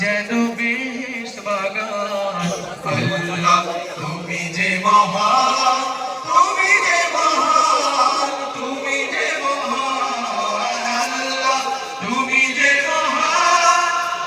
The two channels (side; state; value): both; identical; correlation 1.00